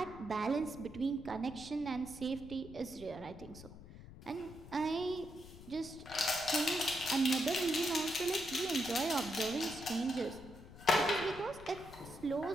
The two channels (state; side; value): noise; left; rumble, 16 dB below the sound